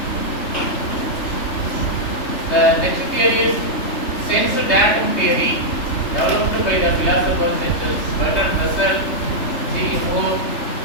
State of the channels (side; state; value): right; late; 3.4 ms